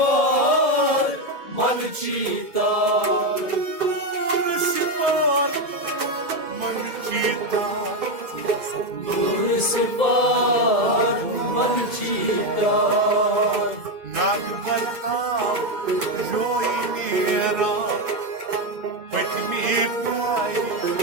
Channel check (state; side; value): late; left; 2.0 ms